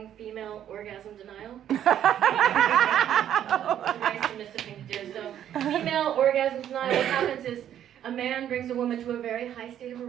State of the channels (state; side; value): quieter; left; 10.5 dB